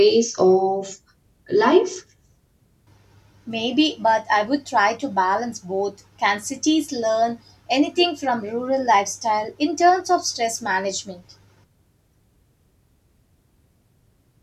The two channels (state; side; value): identical; both; correlation 1.00